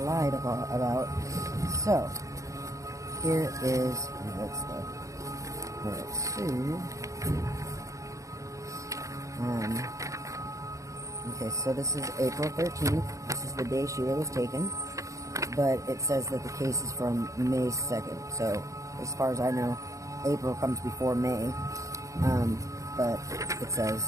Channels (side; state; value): left; late; 0.15 ms